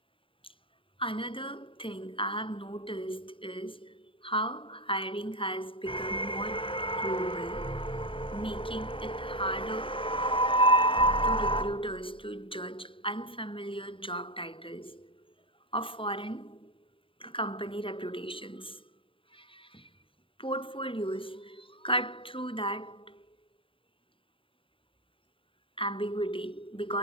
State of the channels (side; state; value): right; late; 0.25 ms